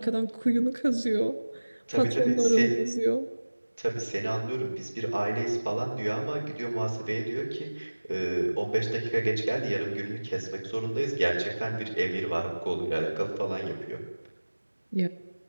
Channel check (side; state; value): both; inverted; correlation -1.00